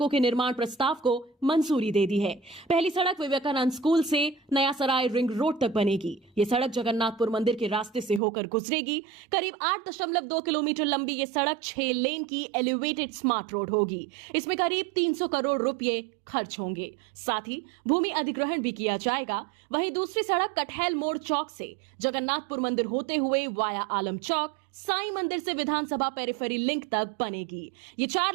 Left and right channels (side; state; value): left; drops out; at 8.2 s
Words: के निर्माण प्रस्ताव को मंजूरी दे दी है। पहली सड़क विवेकानंद स्कूल से नया सराय रिंग रोड तक बनेगी। ये सड़क जगन्नाथपुर मंदिर के रास्ते से होकर गुजरेगी। करीब 8.2 किलोमीटर लंबी ये सड़क 6 लेन की एलिवेटेड स्मार्ट रोड होगी। इसमें करीब 300 करोड़ रुपए खर्च होंगे। साथ ही भूमि अधिग्रहण भी किया जाएगा। वहीं दूसरी सड़क कटहल मोड़ चौक से जगन्नाथपुर मंदिर होते हुए वाया आलम चौक, साईं मंदिर से विधानसभा पेरिफेरी लिंक तक बनेगी। ये 4